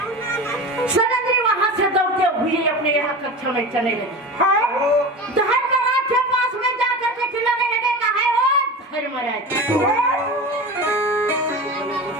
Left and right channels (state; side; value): normal; both; correlation 0.29